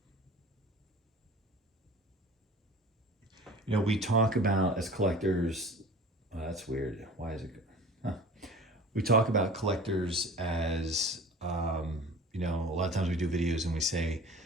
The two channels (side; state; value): both; normal; correlation 0.42